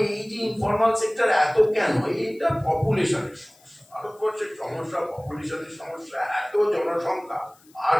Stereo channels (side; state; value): left; noise; hiss, 29 dB below the sound